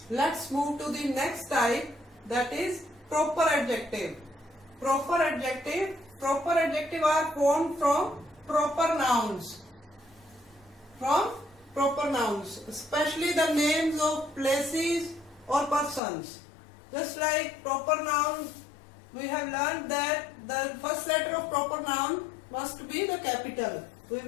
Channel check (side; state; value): right; drops out; at 16.0 s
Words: Let's move to the next type, that is proper adjective. Proper adjective are formed from proper nouns. Especially the names of places or persons. Just like proper noun, we have learned that the first letter of proper noun must be the capital. We